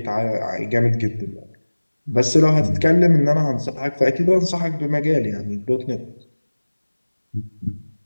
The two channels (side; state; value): both; inverted; correlation -1.00